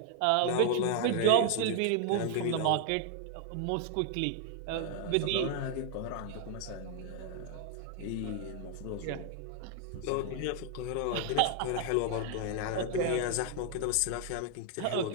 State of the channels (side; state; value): both; different; correlation 0.00